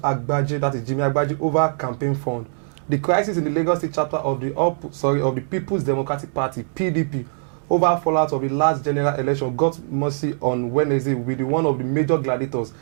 that is Jimi Agbaje, over campaign fund. The crisis in the Lagos State chapter of the People's Democratic Party (PDP) over fallout of the last general election got mercy on Wednesday with one of the major gladiators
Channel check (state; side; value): silent; left; digital silence